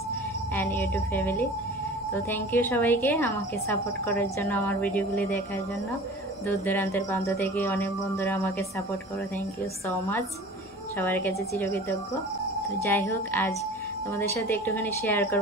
and YouTube family. তো থ্যাংক ইউ সবাইকে আমাকে সাপোর্ট করার জন্য, আমার ভিডিওগুলি দেখার জন্য। দূর দূরান্তের প্রান্ত থেকে অনেক বন্ধুরা আমাকে সাপোর্ট করো, থ্যাংক ইউ সো মাচ। সবার কাছে চিরকৃতজ্ঞ। তো যাই হোক, আজ তোমাদের সাথে একটুখানি শেয়ার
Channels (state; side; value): normal; both; correlation 0.41